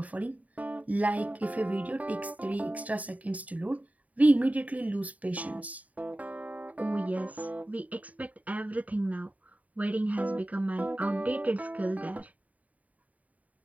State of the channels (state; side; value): late; left; 0.071 ms